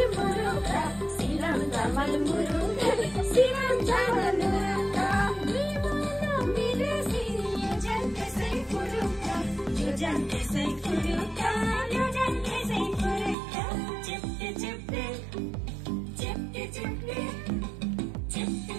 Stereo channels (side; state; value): left; drops out; at 13.4 s